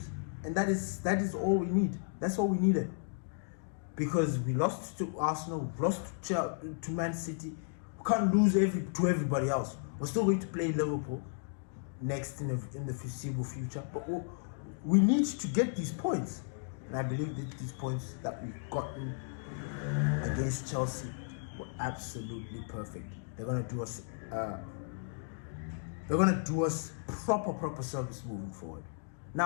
and that is all we need. That's all we needed. Because we lost to Arsenal, we lost to Man City. We can't lose to everybody else. We're still going to play Liverpool next in the foreseeable future. But we need to get these points. And I believe that these points that we've gotten against Chelsea were absolutely perfect. They're gonna do us proper service moving forward.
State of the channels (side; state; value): right; silent; digital silence